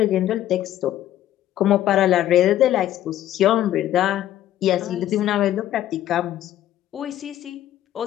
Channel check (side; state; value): right; quieter; 12.5 dB